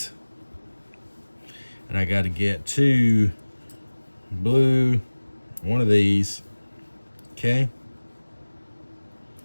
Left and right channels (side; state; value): both; inverted; correlation -1.00